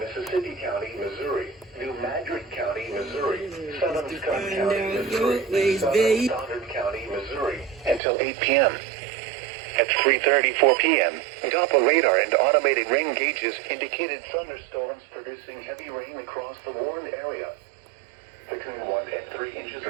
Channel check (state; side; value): drops out; left; at 8.0 s